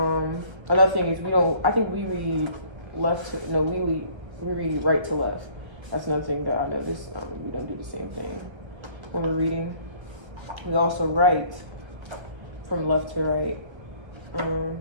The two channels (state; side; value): late; left; 1.4 ms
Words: another thing is we read we read right to left. That's another thing that I noticed. We don't do the same thing when we're reading. We also write from left to right.